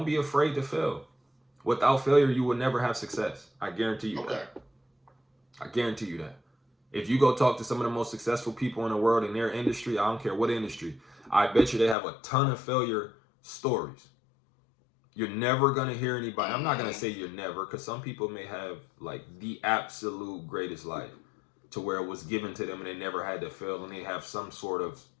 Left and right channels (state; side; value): drops out; right; at 12.0 s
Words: be afraid to fail. Without failure, you will never have success. I guarantee you that. Okay. I guarantee you that. If you go talk to some of the most successful people in the world in their industry, I don't care what industry, I bet you they have a ton of failure stories. You're never gonna hear anybody. I'm not gonna Mm-hmm. say you're never, because some people may have like the absolute greatest life to where it was given to them and they never had to fail and they have some sort of